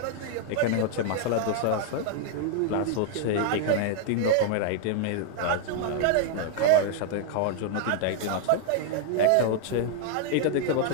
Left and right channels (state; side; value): different; both; correlation 0.00